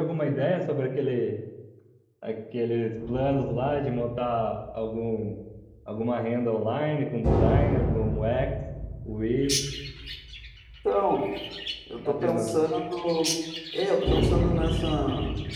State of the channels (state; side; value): identical; both; correlation 1.00